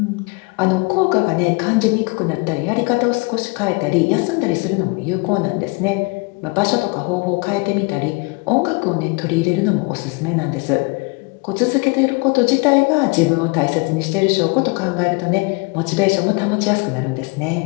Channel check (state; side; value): quieter; right; 28.6 dB